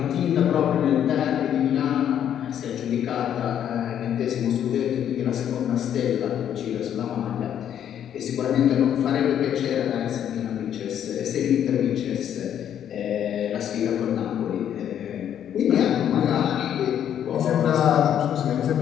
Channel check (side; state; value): right; quieter; 9.8 dB